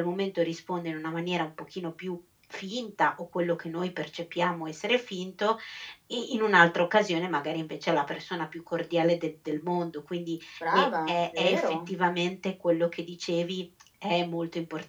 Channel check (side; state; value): both; identical; correlation 1.00